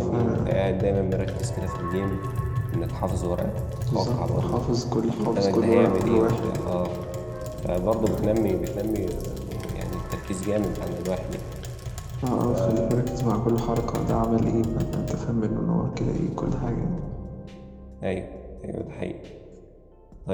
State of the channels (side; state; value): both; identical; correlation 1.00